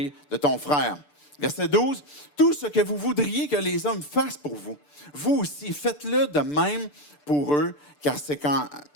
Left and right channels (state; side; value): late; right; 6.8 ms